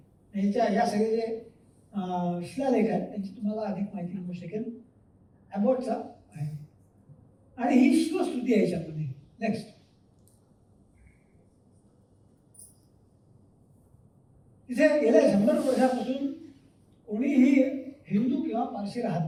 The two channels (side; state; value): both; identical; correlation 1.00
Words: या सगळे जे शिलालेख आहेत त्यांची तुम्हाला अधिक माहिती मिळू शकेल. अबॉटचा आहे आणि ही शिवस्तुती आहे याच्यामध्ये. नेक्स्ट, तिथे गेल्या 100 वर्षापासून कोणीही हिंदू किंवा पारशी